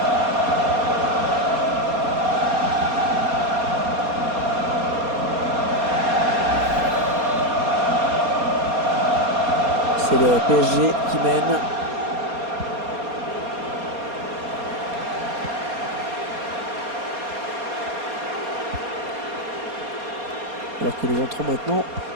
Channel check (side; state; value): left; late; 4.2 ms